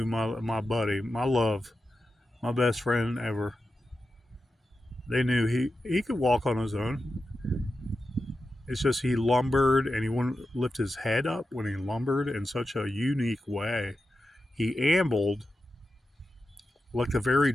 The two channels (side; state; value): both; normal; correlation 0.90